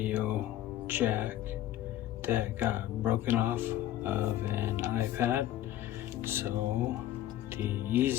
jack that got broken off of an iPad. So the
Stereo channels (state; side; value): quieter; right; 13.3 dB